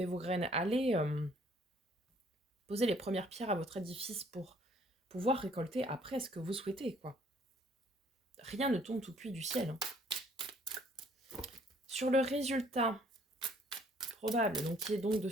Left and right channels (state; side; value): normal; both; correlation 0.61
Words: vos graines, allez poser les premières pierres à votre édifice pour pouvoir récolter après ce que vous souhaitez, quoi. Rien ne tombe tout cuit du ciel. Hein. Sur le résultat probable, donc qui est donc de